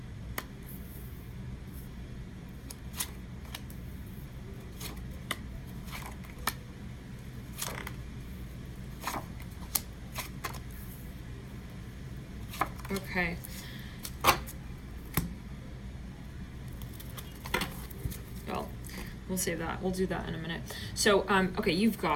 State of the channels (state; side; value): identical; both; correlation 1.00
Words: Okay. Well, we'll save that. We'll do that in a minute. So, okay, you've